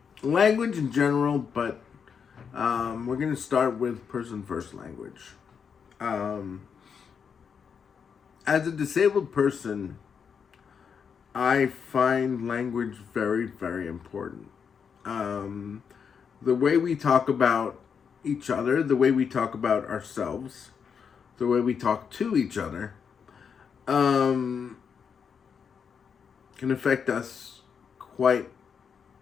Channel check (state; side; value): quieter; right; 6.7 dB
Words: language in general, but we're going to start with person first language. Um, as a disabled person, I find language very, very important. Um, the way we talk about each other, the way we talk about ourselves, the way we talk to each other, um, can affect us quite